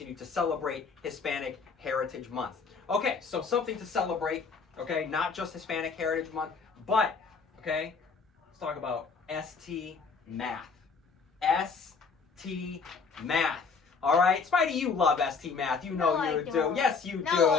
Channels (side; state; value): right; quieter; 5.1 dB